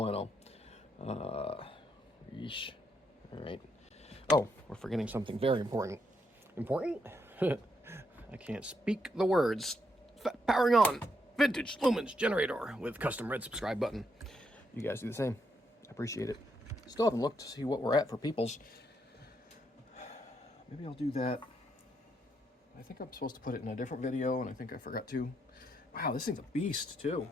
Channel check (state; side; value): normal; both; correlation 0.77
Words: Yeesh. All right. Oh, we're forgetting something very important. Important? I can't speak the words. Powering on. Vintage lumens generator with custom red subscribe button. You guys do the same. I appreciate it. Still haven't looked to see what we're at for peoples. Maybe I'll do that. I think I'm supposed to put it in a different video, and I think I forgot to. Wow, this thing's a beast, too.